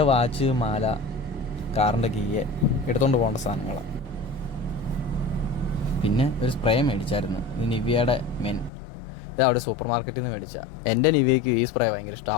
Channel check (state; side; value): drops out; right; at 8.7 s